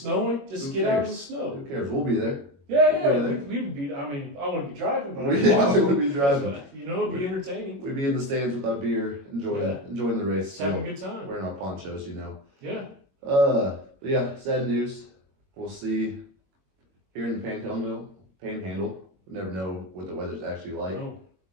just get out of the snow. Who cares? We'll be there. We'd be, I wouldn't be driving, but we wouldn't be driving. You know, it'd be entertaining. We'd be in the stands with our beer, enjoying the race. Just having a good time. Wearing our ponchos, you know. Yeah. But yeah, sad news. We'll see here in the Panhandle. We never know what the weather's actually like. No.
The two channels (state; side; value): late; left; 21 ms